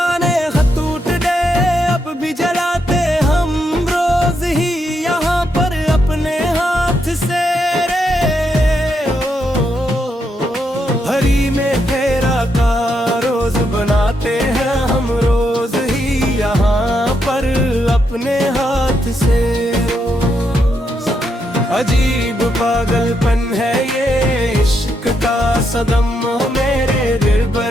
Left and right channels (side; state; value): both; normal; correlation 0.80